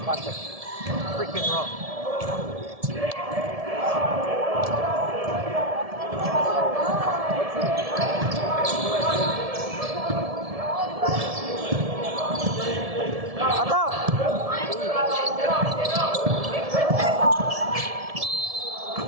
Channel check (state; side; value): late; left; 1.7 ms